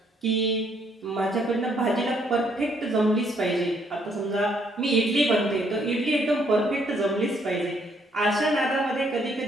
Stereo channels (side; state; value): both; normal; correlation 0.69